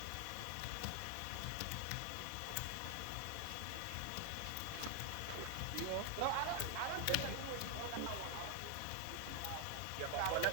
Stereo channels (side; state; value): both; different; correlation 0.00